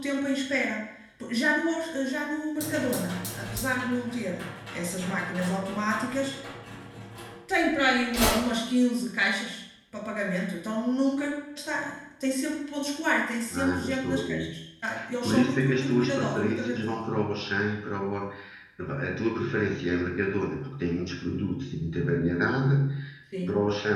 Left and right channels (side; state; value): both; identical; correlation 1.00